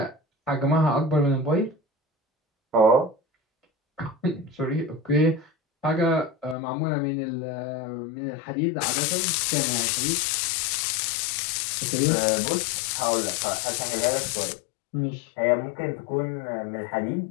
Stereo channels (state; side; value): drops out; right; at 6.6 s